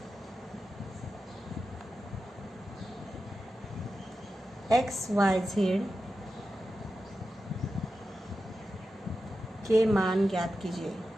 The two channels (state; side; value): normal; both; correlation 0.91